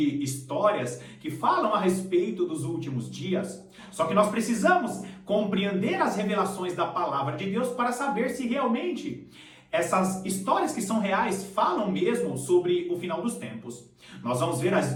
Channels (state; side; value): identical; both; correlation 1.00